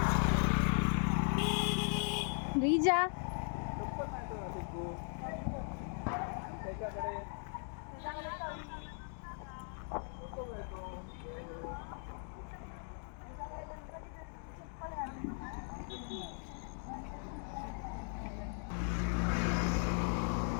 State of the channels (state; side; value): silent; right; 52 dB below the other